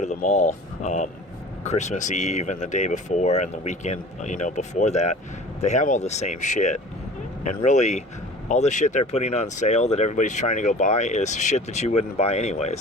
the mall, Christmas Eve and the day before and the weekend, before that, they have all the same shit. And really, all the shit they're putting on sale that everybody's trying to go buy is shit that you wouldn't buy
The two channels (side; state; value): both; normal; correlation 0.43